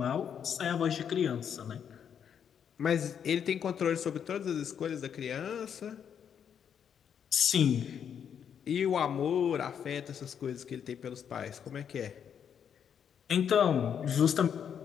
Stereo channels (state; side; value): quieter; right; 8.1 dB